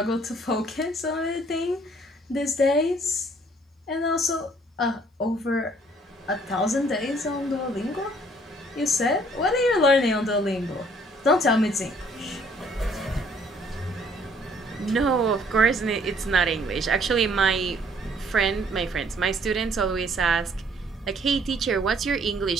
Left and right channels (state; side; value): normal; both; correlation 0.61